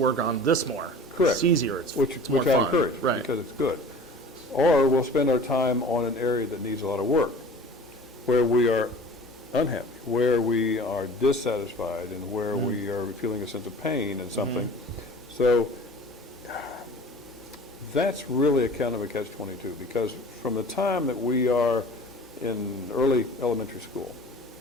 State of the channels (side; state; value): both; normal; correlation 0.43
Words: on this more. Correct. It's easier. It's which more I fun. encourage, right. Because it's good. Or we'll spend our time on an area that needs a lot of work, where we are unhappy, where we are dissatisfied, and where mm-hmm. we are feeling a sense of pain and something. Mm-hmm. So that's really a kind of a catch-22, because from the time that we are in early elementary school,